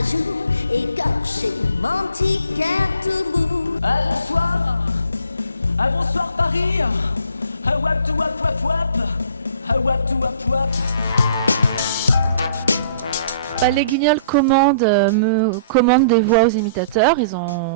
joue, écorché, mon petit cœur tout bout. Bonsoir, bonsoir Paris, wap to wap wap wap, wap to wap wap. Les Guignols me commandent des voix aux imitateurs. Ils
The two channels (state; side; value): inverted; both; correlation -0.55